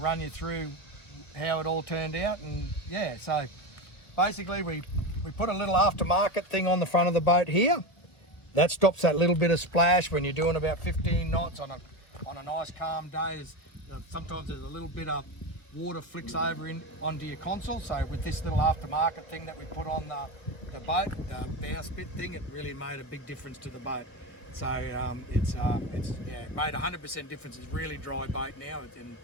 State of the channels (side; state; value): right; late; 1.2 ms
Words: you through how it all turned out. And yeah, so basically we put a little aftermarket thing on the front of the boat here. That stops that little bit of splash when you're doing about 15 knots on a nice calm day. Sometimes there's a little bit of water flicks over onto your console. So with this little aftermarket thing that we put on the boat, the bowsprit thing, it really made a big difference to the boat. So it made 100% difference. It's a really dry boat now, and